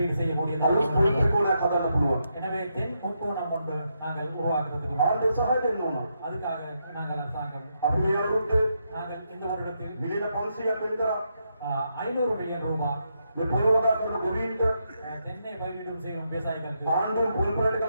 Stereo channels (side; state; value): both; inverted; correlation -0.81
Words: செய்யக்கூடியது. අලුත් පොල් ත්‍රිකෝණයක් හදන්න පුළුවන්. எனவே தென் முக்கோணம் ஒன்று நாங்கள் உருவாக்குறதுக்கு ආණ්ඩුව සහාය දෙන්න ඕන. அதுக்காக நாங்கள் அரசாங்கம் අපි මේ අවුරුද්දේ நாங்கள் இந்த வருடத்தில் මිලියන 500ක් වෙන් කරා. 500 மில்லியன் ரூபாய் මේ පොළොව වගා කරන ගොවීන්ට தென்னை பயிரிடும் செய்யும் விவசாயிகளுக்கு ආණ්ඩුවෙන් පොල් පොලට